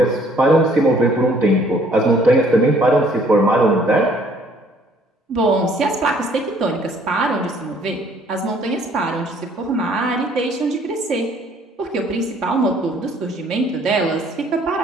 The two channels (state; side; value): normal; both; correlation 0.60